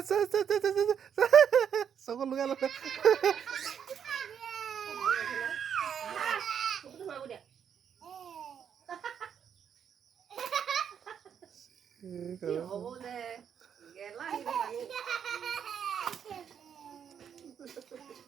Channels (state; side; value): quieter; left; 8.1 dB